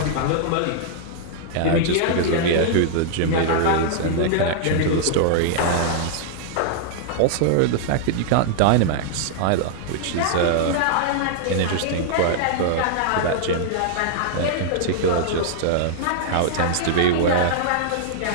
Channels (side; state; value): both; different; correlation -0.01